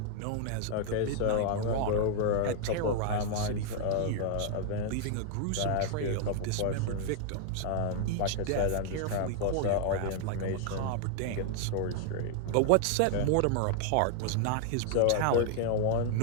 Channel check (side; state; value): both; different; correlation 0.00